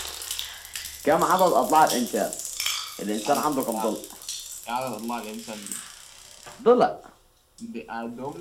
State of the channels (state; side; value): identical; both; correlation 1.00